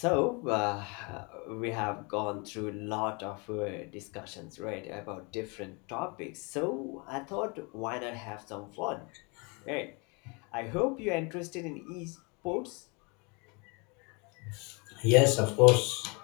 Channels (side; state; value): right; quieter; 30.8 dB